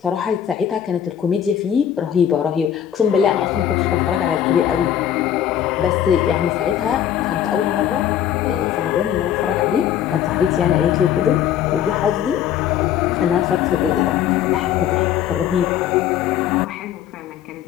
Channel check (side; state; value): right; quieter; 10.0 dB